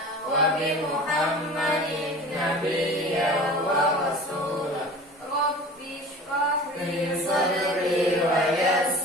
wa bi Muhammadin nabiyya wa rasulah. Rabbi shrah Li sadri wa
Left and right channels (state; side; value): normal; both; correlation 0.39